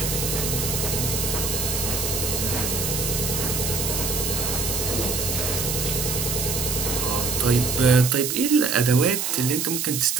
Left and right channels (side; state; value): right; noise; hiss, 1 dB below the sound